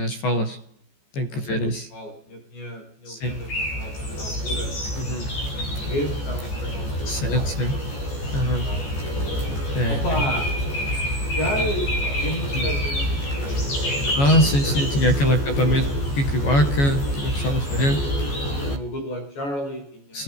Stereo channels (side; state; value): right; late; 14 ms